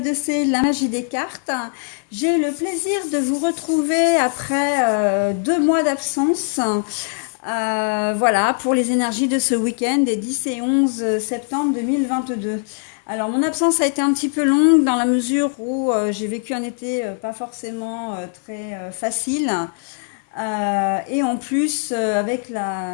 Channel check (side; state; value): right; silent; 64 dB below the other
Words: la magie des cartes. J'ai le plaisir de vous retrouver après 2 mois d'absence. Voilà, pour les énergies de ce week-end des 10 et 11 septembre 2022. Alors, mon absence a été un petit peu longue dans la mesure où j'ai vécu un été pas forcément très facile. Et en plus, avec